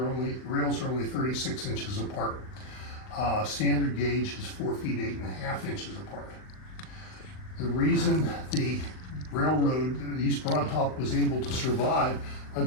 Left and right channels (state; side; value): late; right; 39 ms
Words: only 36 inches apart. Standard gauge is 4 feet 8.5 inches apart. The reason the railroad, the East Broad Top, was able to survive